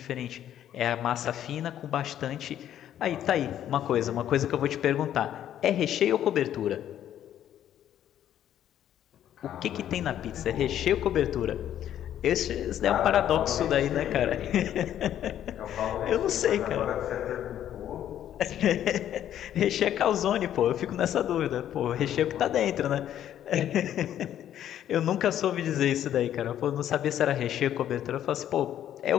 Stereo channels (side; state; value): right; quieter; 10.9 dB